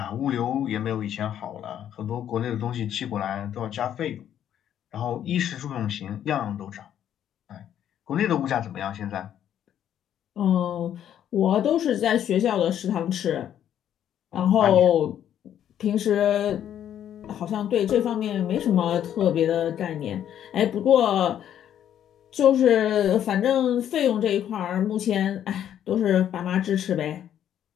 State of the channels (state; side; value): quieter; right; 10.3 dB